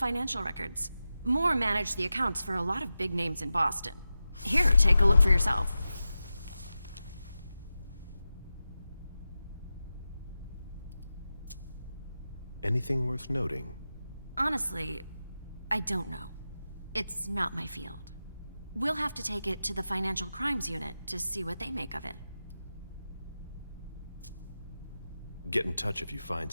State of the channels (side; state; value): both; inverted; correlation -0.92